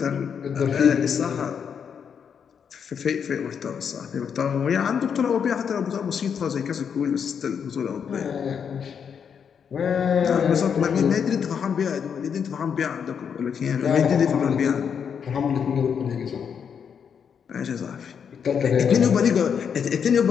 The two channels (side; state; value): right; quieter; 7.2 dB